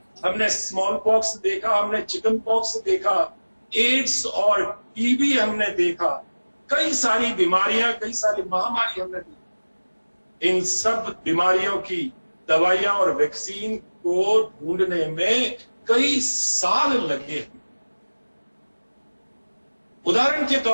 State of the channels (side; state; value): both; inverted; correlation -1.00